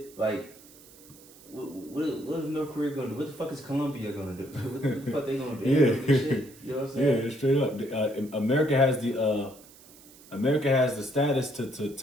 Like what is North Korea gonna do? What the fuck is Colombia gonna do? What the fuck they gonna do? Yeah. Shit. You know what I'm saying? Yeah, straight up. America has the status to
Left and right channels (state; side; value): noise; right; hiss, 23 dB below the sound